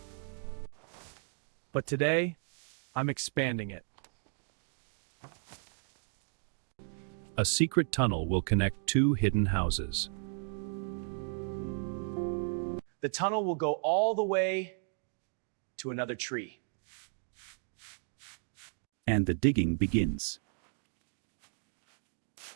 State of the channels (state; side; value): silent; left; 55 dB below the other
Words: But today, I'm expanding it. A secret tunnel will connect two hidden houses. The tunnel will go all the way to another tree. And the digging begins.